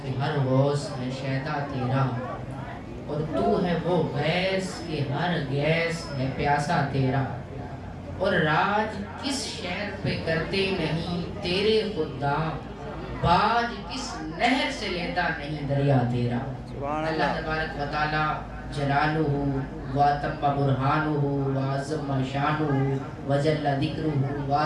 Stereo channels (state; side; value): identical; both; correlation 1.00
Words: کہ ہر غوث ہے شیدا تیرا، اور تو ہے وہ غیث کہ ہر غیث ہے پیاسا تیرا، اور راج کس شہر پہ کرتے نہیں تیرے خدام، باج کس نہر سے لیتا نہیں دریا تیرا۔ اللہ تبارک و تعالی جلالہ واتم برہانہ وعظم شانہ وجل ذکرہ